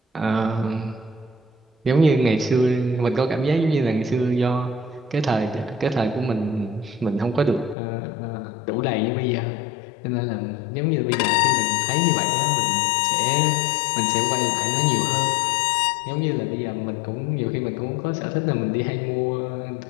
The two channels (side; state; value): right; drops out; at 7.8 s